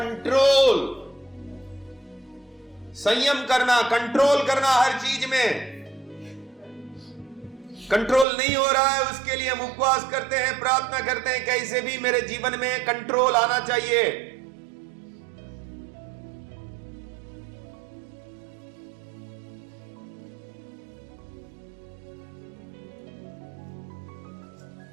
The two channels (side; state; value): left; drops out; at 8.2 s